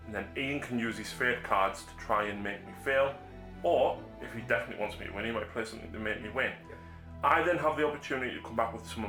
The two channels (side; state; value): both; identical; correlation 1.00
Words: and then Ian can use his fate cards to try and make me fail, or if he definitely wants me to win, he might play something to make me win. Yep. I then have the opportunity to come back with some of